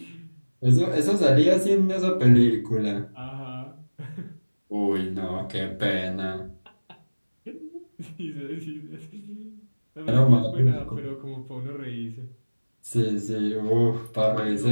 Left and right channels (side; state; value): both; inverted; correlation -1.00